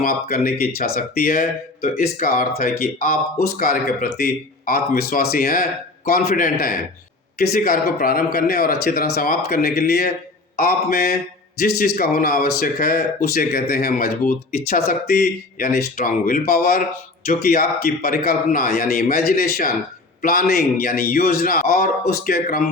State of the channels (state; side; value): quieter; right; 3.2 dB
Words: करने की इच्छा शक्ति है तो इसका अर्थ है कि आप उस कार्य के प्रति आत्मविश्वासी हैं, कॉन्फिडेंट हैं। किसी कार्य को प्रारंभ करने और अच्छी तरह समाप्त करने के लिए आप में जिस चीज का होना आवश्यक है उसे कहते हैं मजबूत इच्छा शक्ति यानी स्ट्रांग विल पावर, जो कि आपकी परिकल्पना यानी इमेजिनेशन, प्लानिंग यानी योजना और उसके